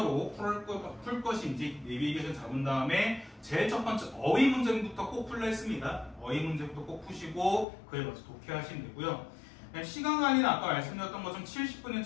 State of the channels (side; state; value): right; drops out; at 7.7 s